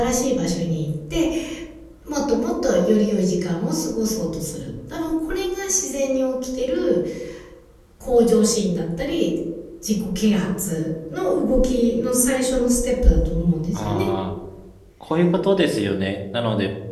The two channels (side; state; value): both; identical; correlation 1.00